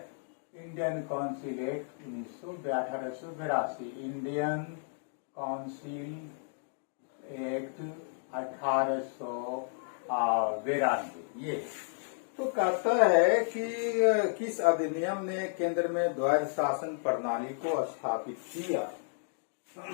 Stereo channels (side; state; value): right; silent; digital silence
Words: Indian council act 1882, Indian council Act 1892। ये तो कहता है कि किस अधिनियम ने केंद्र में द्वैध शासन प्रणाली को स्थापित किया?